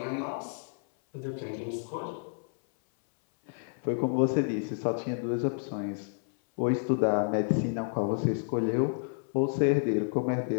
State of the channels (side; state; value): right; silent; 58 dB below the other